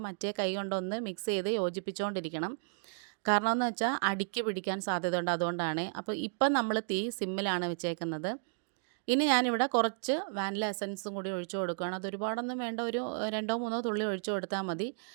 മറ്റേ കൈ കൊണ്ടൊന്ന് മിക്സ് ചെയ്ത് യോജിപ്പിച്ചുകൊണ്ടിരിക്കണം. കാരണം എന്ന് വെച്ചാൽ അടിക്ക് പിടിക്കാൻ സാധ്യതയുണ്ട്, അതുകൊണ്ടാണ്. അപ്പോൾ ഇപ്പം നമ്മൾ തീ സിമ്മിലാണ് വെച്ചേക്കുന്നത്. ഇനി ഞാനിവിടെ കുറച്ച് വാനില എസൻസും കൂടി ഒഴിച്ചു കൊടുക്കുകയാണ്. അത് ഒരുപാടൊന്നും വേണ്ട, ഒരു 2-3 തുള്ളി ഒഴിച്ചു കൊടുത്താൽ മതി.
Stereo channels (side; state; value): left; silent; digital silence